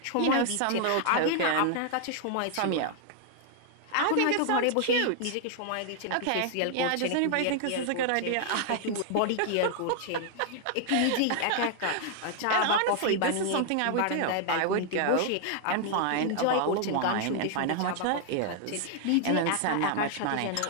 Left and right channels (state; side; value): different; both; correlation 0.00